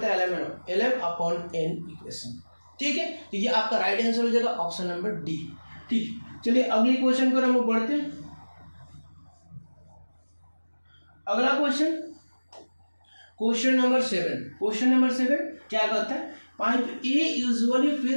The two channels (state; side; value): inverted; both; correlation -1.00